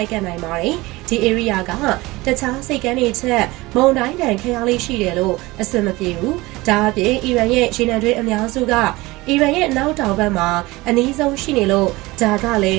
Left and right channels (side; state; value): left; quieter; 20.9 dB